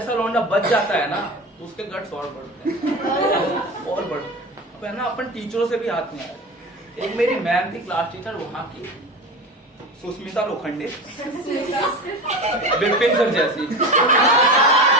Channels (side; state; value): both; normal; correlation 0.29